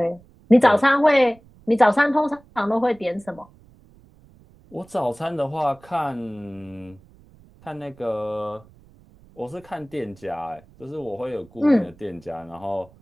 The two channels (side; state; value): right; noise; rumble, 27 dB below the sound